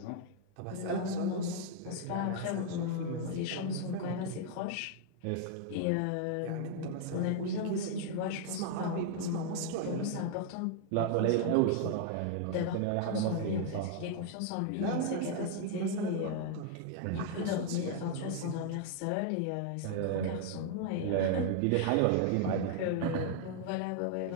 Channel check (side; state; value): both; different; correlation 0.00